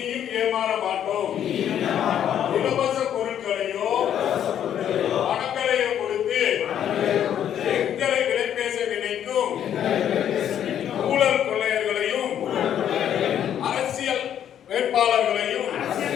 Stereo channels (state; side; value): quieter; right; 9.9 dB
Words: ஏமாற மாட்டோம். இலவச பொருட்களையோ பணங்களையோ கொடுத்து எங்களை விலை பேச நினைக்கும் ஊழல் கொள்ளையர்களையும் அரசியல் வேட்பாளர்களையும்